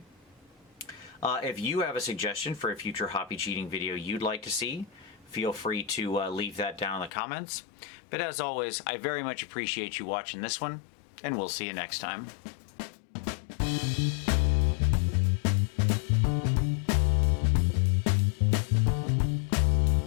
If you have a suggestion for a future hobby cheating video you'd like to see, feel free to leave that down in the comments. But as always, I very much appreciate you watching this one, and we'll see you next time.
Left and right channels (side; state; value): right; drops out; at 7.1 s